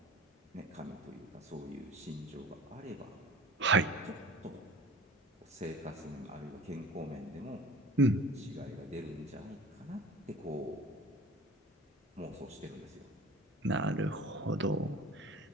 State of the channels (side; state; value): both; normal; correlation 0.42